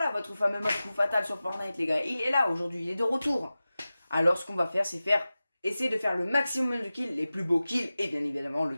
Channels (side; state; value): both; inverted; correlation -0.96